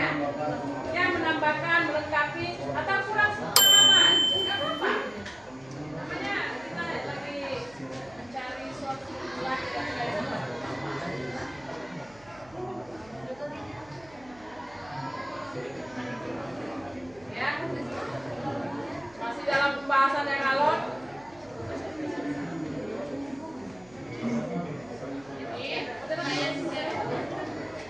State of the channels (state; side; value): noise; right; hum, 25 dB below the sound